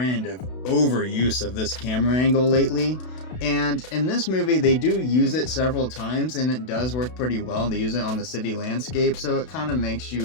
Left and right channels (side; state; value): right; late; 32 ms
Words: of overuse of this camera angle lately, and in this movie they do use it several times, and it does work pretty well. They use it on the city landscape, so it kind of makes